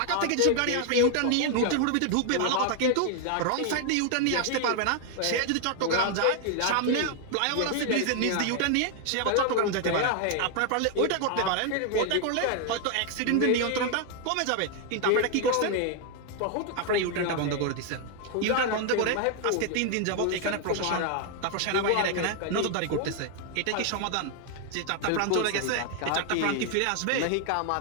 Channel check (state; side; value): different; both; correlation 0.00